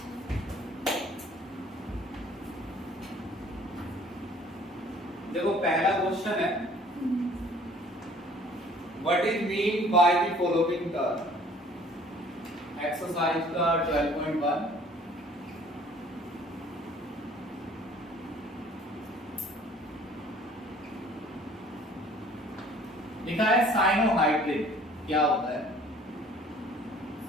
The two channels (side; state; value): both; normal; correlation 0.54